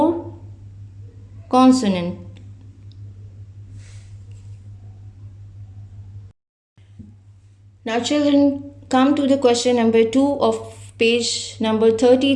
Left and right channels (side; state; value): both; identical; correlation 1.00